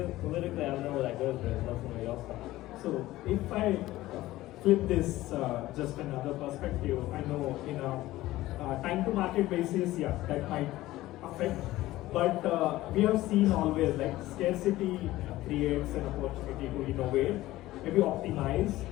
I don't know where that goes, but let somebody else talk. So if I flip this just another perspective, I know in a time to market basis, yeah, that might affect, but we have seen always like scarcity creates an opportunity to innovate, maybe optimize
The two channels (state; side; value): quieter; right; 16.6 dB